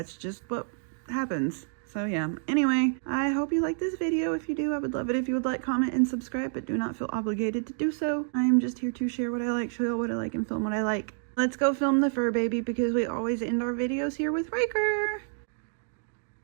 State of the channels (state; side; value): silent; left; digital silence